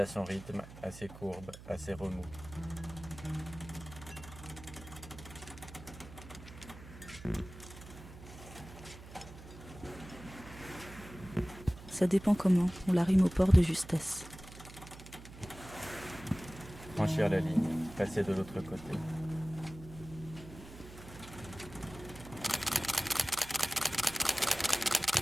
son rythme, à ses courbes, à ses remous. Ça dépend comment, on la rime au port de justesse. Franchir la ligne, passer de l'autre côté.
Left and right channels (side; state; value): right; noise; hum, 16 dB below the sound